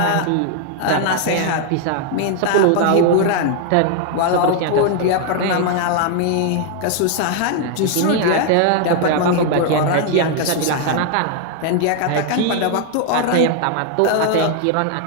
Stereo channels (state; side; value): different; both; correlation 0.00